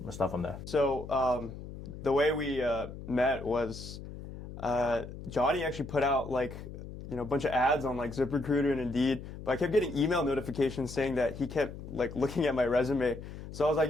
Let's start from there. So the way we met was Johnney actually put out like a bunch of ads on like ZipRecruiter and Indeed, but I kept getting email notifications saying that he kept like looking at my resume. So I was like,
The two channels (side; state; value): left; noise; hum, 12 dB below the sound